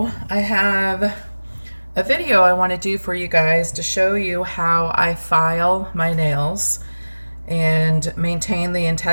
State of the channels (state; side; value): inverted; both; correlation -1.00